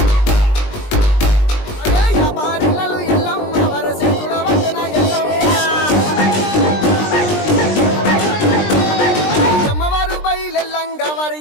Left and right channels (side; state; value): right; late; 20 ms